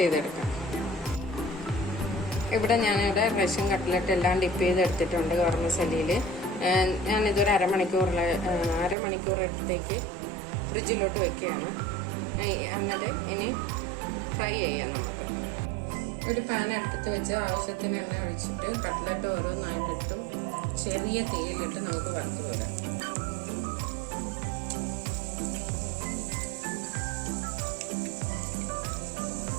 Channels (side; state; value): left; drops out; at 9.0 s